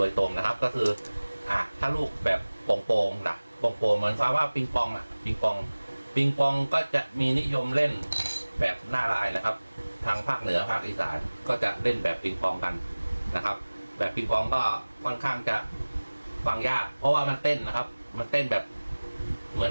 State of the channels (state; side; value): inverted; both; correlation -1.00